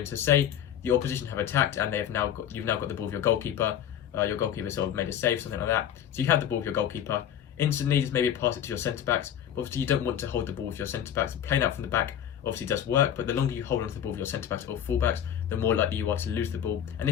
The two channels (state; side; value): quieter; right; 9.9 dB